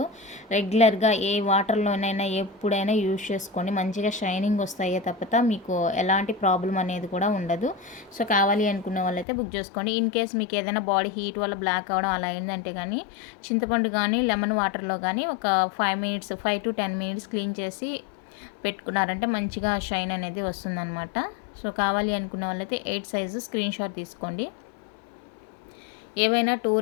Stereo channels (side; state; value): right; drops out; at 9.2 s